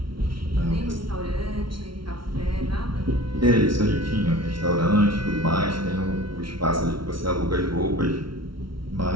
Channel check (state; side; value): late; left; 0.74 ms